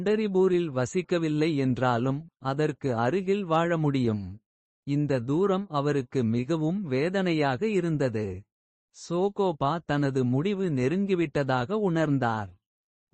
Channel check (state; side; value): identical; both; correlation 1.00